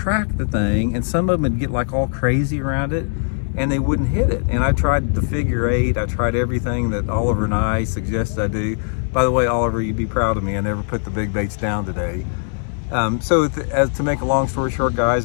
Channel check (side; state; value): right; silent; 61 dB below the other